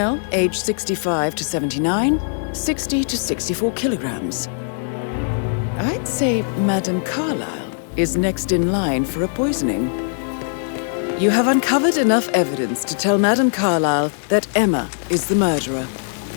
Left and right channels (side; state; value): right; silent; digital silence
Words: age 65 to 79, 60 to 64 kilograms. I'd say Madame Carlyle is next in line for a poisoning. You have uncovered enough evidence to tell Madame Carlyle that Emma is the murderer.